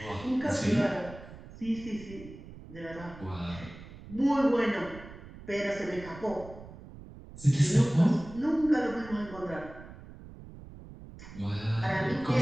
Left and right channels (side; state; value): right; noise; rumble, 16 dB below the sound